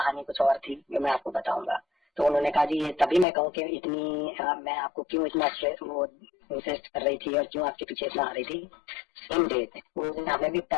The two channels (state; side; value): drops out; right; at 3.2 s